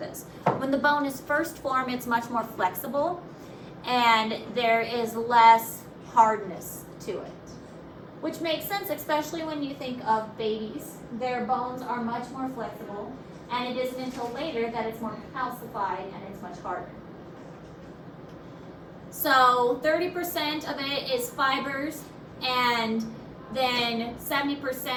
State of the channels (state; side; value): identical; both; correlation 1.00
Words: When the bone is first formed, it's much more flexible, and there is less hardness to it, which makes sense, especially when you think of babies. Their bones are much more flexible, and it isn't until later that it's more calcified and it's much harder. So 30% of it is fibers, and then